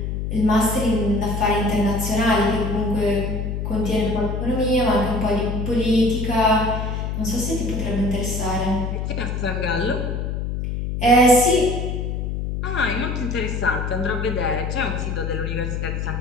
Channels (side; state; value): left; noise; hum, 3 dB below the sound